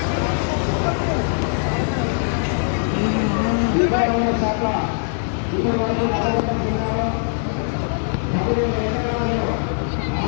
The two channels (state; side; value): silent; right; 59 dB below the other